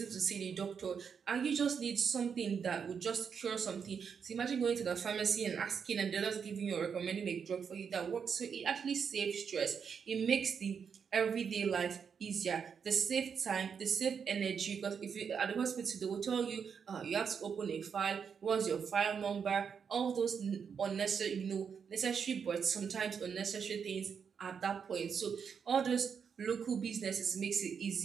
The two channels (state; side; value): quieter; left; 6.7 dB